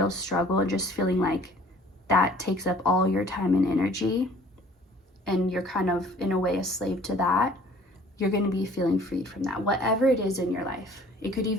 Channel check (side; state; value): both; normal; correlation 0.53